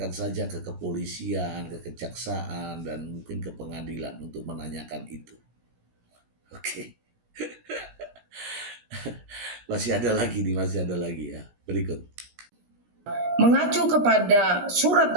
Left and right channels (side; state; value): left; late; 17 ms